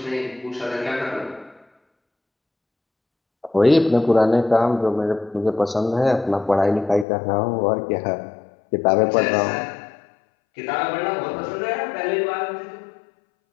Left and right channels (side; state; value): right; drops out; at 7.1 s